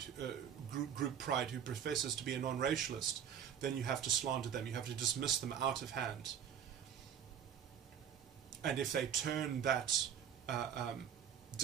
who professes to be a non-racialist, then you have to slander them. You have to dismiss them out of hand. And if they turn that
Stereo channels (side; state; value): left; quieter; 8.8 dB